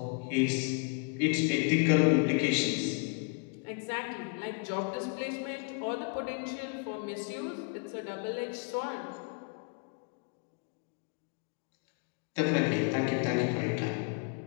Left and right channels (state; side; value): quieter; right; 36.6 dB